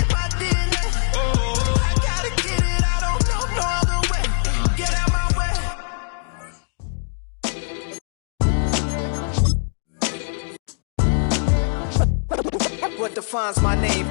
my DNA. I gotta get it, I don't know no other way. Get out my way. What defines my name?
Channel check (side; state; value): right; silent; digital silence